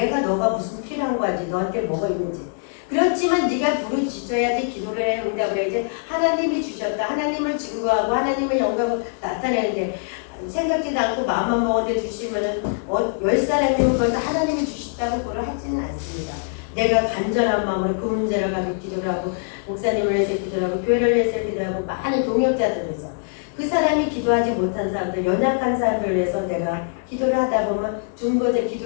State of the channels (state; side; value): silent; right; digital silence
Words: 너가 무슨 필요한 거 알지. 너한테 뭐가 있는지. 그렇지만 네가 부르짖어야지 기도를 해 응답을 해야지 하나님이 주셨다. 하나님을 증거하고 하나님의 영광을 나타내는데 생각지도 않고 마음만 먹었는데 주시면은 10사람이면 그걸 다 하나님이 주셨다고 그걸 하지는 않습니다. 내가 간절한 마음으로 그 문제를 가지고 기도를 하고 목사님을 위해서 기도를 하고 교회를 위해서 기도를 하고 많은 동역자들을 위해서 그 사람이 기도하지 못한 사람들 연약한 사람들을 위해서 내가 기도를 하다 보면